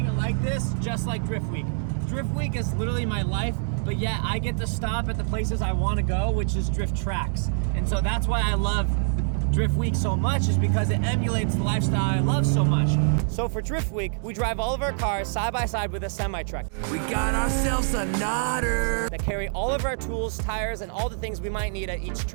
it like this, just like Drift Week. Drift Week is literally my life, but yet I get to stop at the places I want to go, which is drift tracks. And so that's why I love Drift Week so much, is because it emulates the lifestyle I love so much. So for Drift Week, we drive all of our cars side by side with a semi-truck. We got ourselves a nodder that carry all of our tools, tires, and all the things we might need at each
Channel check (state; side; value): silent; left; digital silence